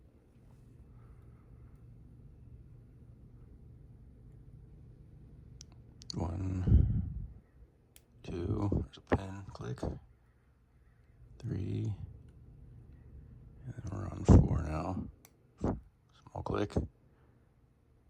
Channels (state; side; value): identical; both; correlation 1.00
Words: One, two, there's a pen, click. 3, and then we're on 4 now. Small click.